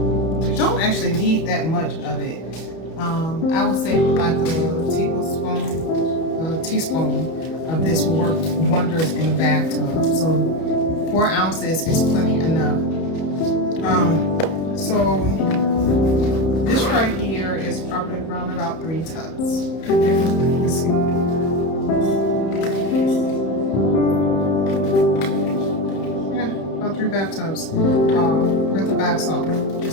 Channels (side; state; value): right; late; 31 ms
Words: You don't actually need that much of it. I would say like a teaspoon of this will work wonders in the bathtub. So 4 ounces is plenty enough. So this right here is probably around about 3 tubs. Okay, let's see. Yeah, about 3 bathtubs with the bath salt.